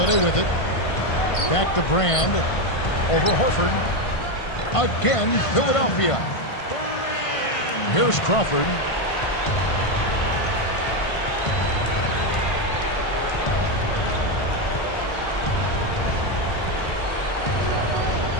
with it. Back to Brand. Over Horford. Again, Philadelphia. Here's Crawford.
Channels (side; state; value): right; late; 1.5 ms